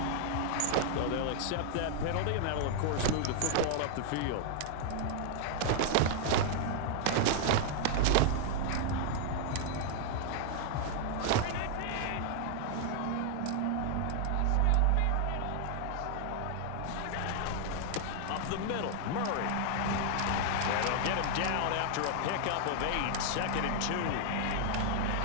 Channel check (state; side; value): different; both; correlation 0.00